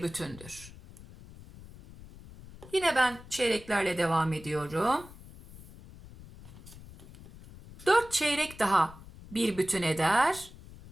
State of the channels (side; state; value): left; noise; rumble, 18 dB below the sound